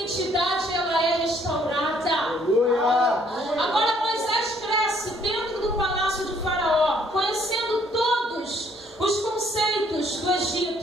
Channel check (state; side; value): normal; both; correlation 0.65